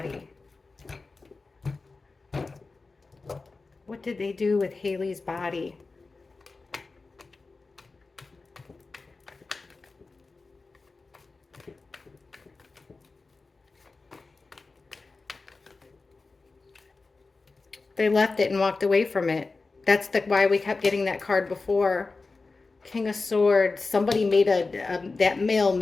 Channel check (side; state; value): right; quieter; 3.8 dB